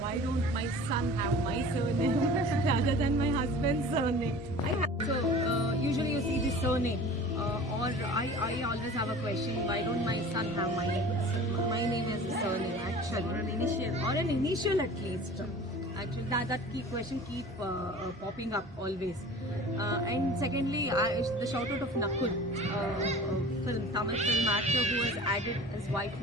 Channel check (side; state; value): both; normal; correlation 0.41